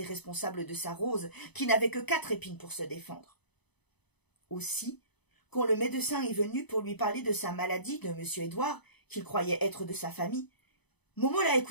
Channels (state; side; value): late; right; 0.99 ms